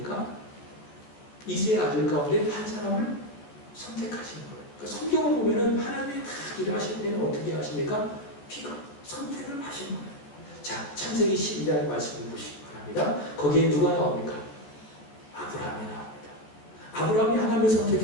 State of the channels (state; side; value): late; right; 14 ms